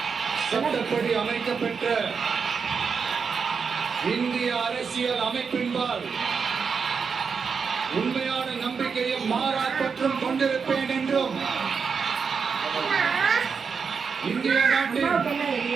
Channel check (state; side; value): quieter; left; 5.7 dB